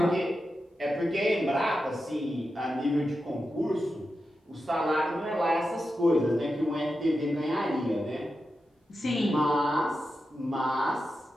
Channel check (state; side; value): normal; both; correlation 0.90